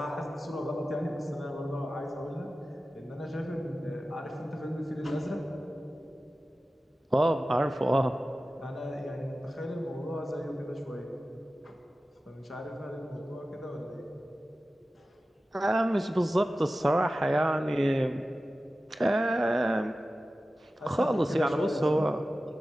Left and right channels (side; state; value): both; normal; correlation 0.95